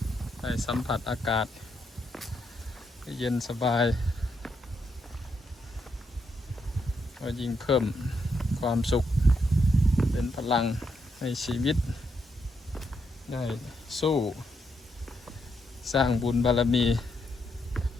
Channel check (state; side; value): normal; both; correlation 0.79